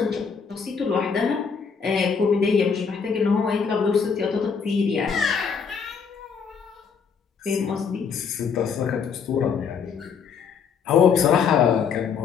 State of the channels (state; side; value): quieter; right; 6.2 dB